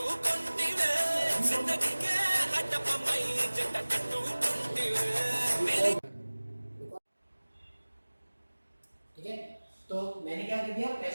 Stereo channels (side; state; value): both; inverted; correlation -1.00